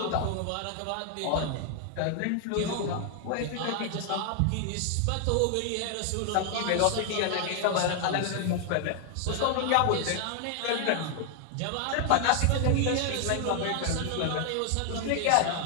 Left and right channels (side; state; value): both; different; correlation 0.00